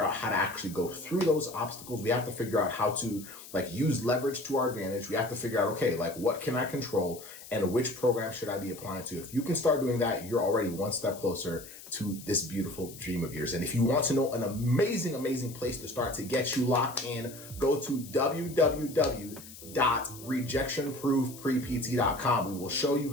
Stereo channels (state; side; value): noise; left; hiss, 16 dB below the sound